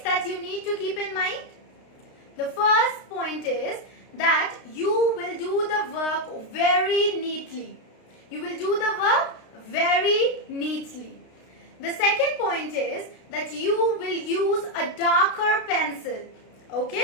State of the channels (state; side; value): late; right; 32 ms